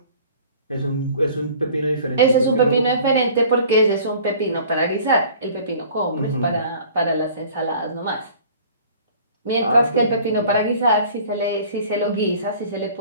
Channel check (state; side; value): inverted; both; correlation -0.49